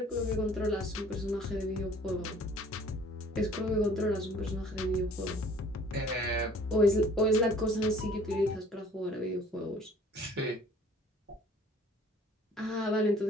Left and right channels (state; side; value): normal; both; correlation 0.53